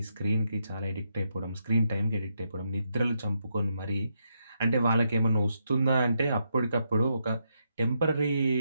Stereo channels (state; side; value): inverted; both; correlation -0.80